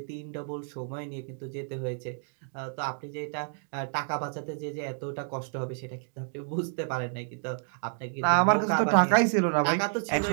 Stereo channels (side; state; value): left; silent; 58 dB below the other